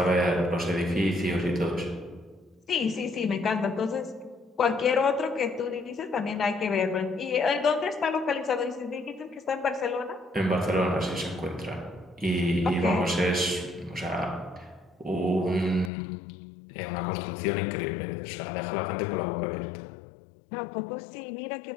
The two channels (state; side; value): drops out; right; at 15.9 s